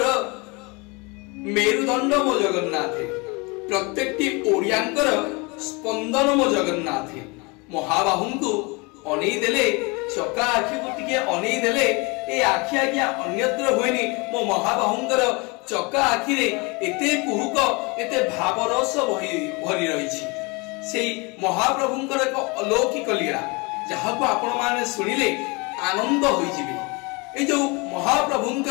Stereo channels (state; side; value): quieter; right; 28.2 dB